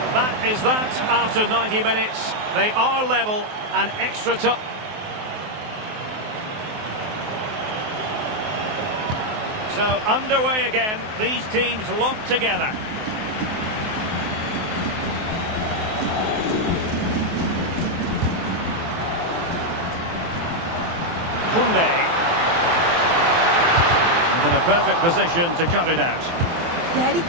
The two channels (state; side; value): late; left; 23 ms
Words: That is that after 90 minutes. They are level and extra time. So underway again. These teams locked together. And in a perfect position to cut it out. Yeah, he